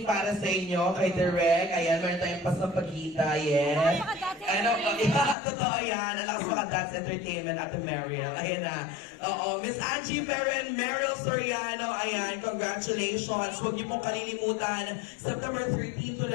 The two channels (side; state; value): right; drops out; at 5.4 s